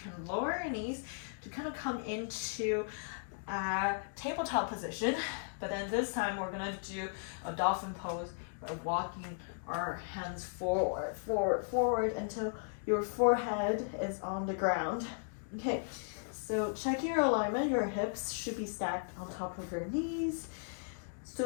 lower your knees to kind of come into a tabletop position. But then this time we're gonna do a dolphin pose by walking our hands forward until your forehead is on the ground. Okay, so checking your alignment, your hips should be stacked on top of your knees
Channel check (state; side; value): silent; right; digital silence